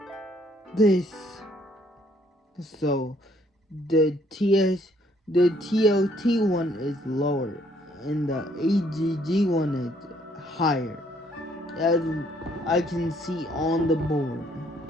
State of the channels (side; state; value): both; normal; correlation 0.66